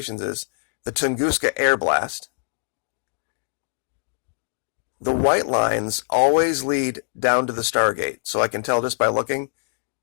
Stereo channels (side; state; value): right; silent; digital silence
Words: is the Tunguska Air Blast. The white lines always lead down to the Stargate. So I can tell just by looking,